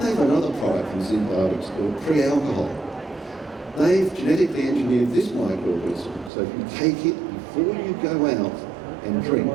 have another product from Z-Biotics called pre-alcohol. They've genetically engineered this microorganism, so if you take it before you go out and drink,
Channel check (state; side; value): drops out; left; at 6.3 s